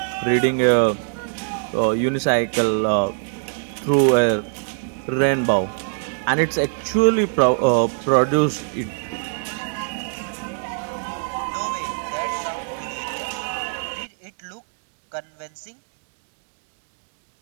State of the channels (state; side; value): silent; left; digital silence